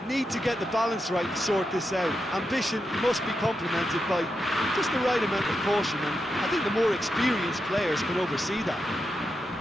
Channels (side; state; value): both; normal; correlation 0.86